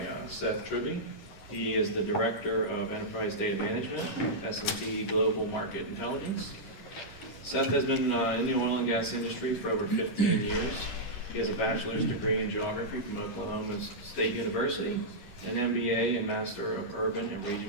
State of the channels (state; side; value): late; right; 11 ms